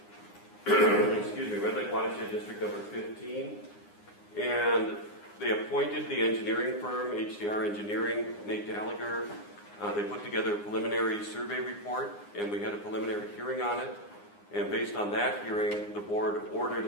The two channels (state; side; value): late; right; 9.7 ms